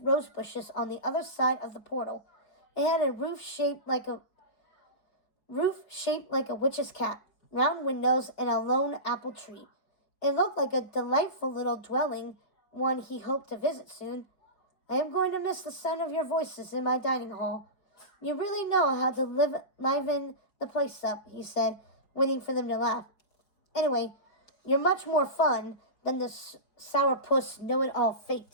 bushes on the other side of the portal. It had a roof shaped like a witch's cap, round windows, and a lone apple tree. It looked like a delightful little dwelling, one he hoped to visit soon. "I am going to miss the sound of your voices in my dining hall. You really know how to liven the place up," he said, waiting for them to laugh. "Anyway, you're much more fun than the sourpuss know-it-all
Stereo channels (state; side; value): late; right; 4.7 ms